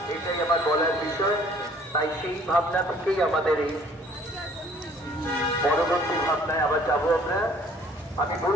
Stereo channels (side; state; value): both; normal; correlation 0.56